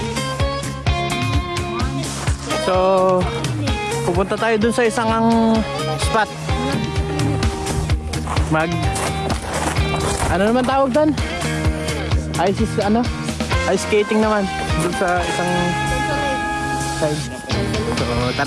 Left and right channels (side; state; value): both; identical; correlation 1.00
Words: So, pupunta tayo dun sa isang spot. Ano naman tawag doon? Ice skating naman. Dun sa isang side. So,